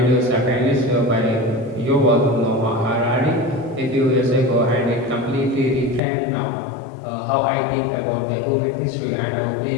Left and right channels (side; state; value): right; drops out; at 6.0 s